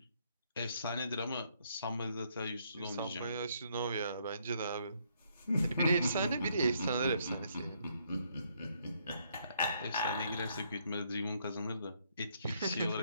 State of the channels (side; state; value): both; inverted; correlation -0.71